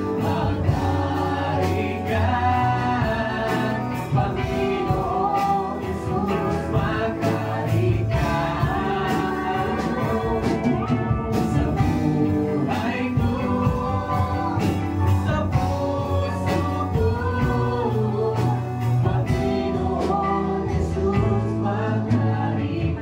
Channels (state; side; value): identical; both; correlation 1.00